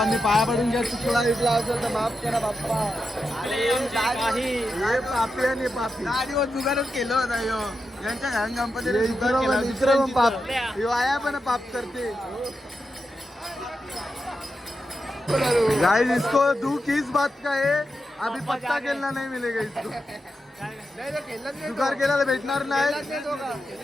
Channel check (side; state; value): both; normal; correlation 0.88